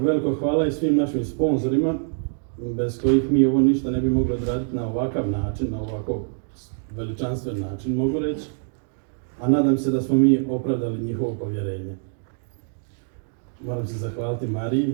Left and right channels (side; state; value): left; silent; 62 dB below the other